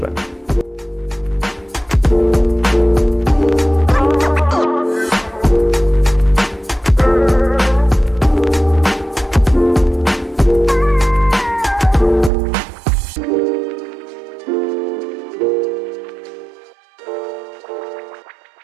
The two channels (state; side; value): drops out; left; at 12.3 s